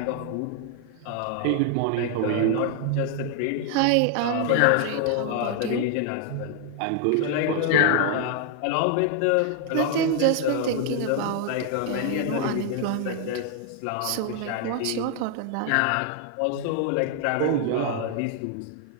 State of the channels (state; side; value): different; both; correlation 0.00